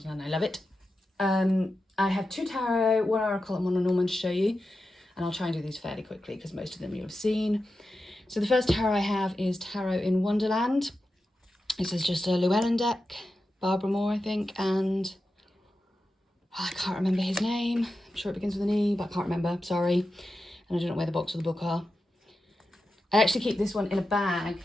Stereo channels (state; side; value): normal; both; correlation 0.91